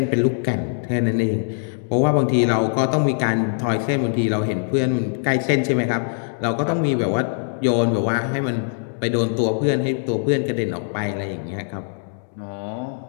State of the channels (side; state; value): right; silent; 64 dB below the other